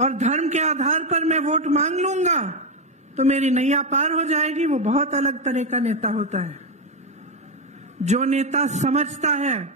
धर्म के आधार पर मैं वोट मांग लूंगा तो मेरी नैया पार हो जाएगी। वो बहुत अलग तरह का नेता होता है। जो नेता समझता है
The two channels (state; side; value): normal; both; correlation 0.07